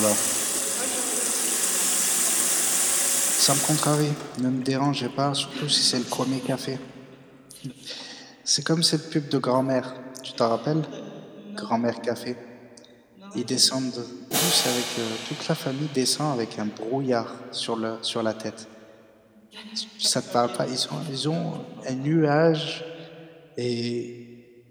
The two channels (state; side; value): identical; both; correlation 1.00